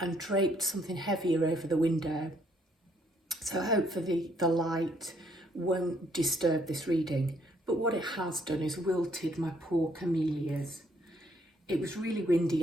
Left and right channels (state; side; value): normal; both; correlation 0.68